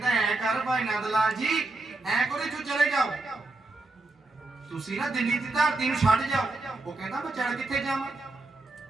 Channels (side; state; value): left; quieter; 3.1 dB